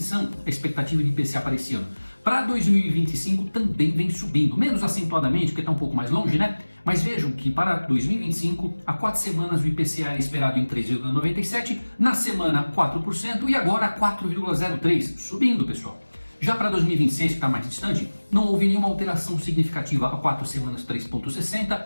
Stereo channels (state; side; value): inverted; both; correlation -1.00